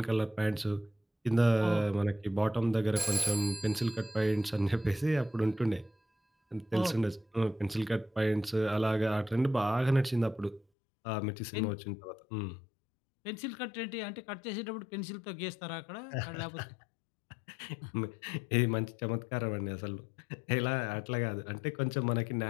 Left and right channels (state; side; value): drops out; right; at 10.7 s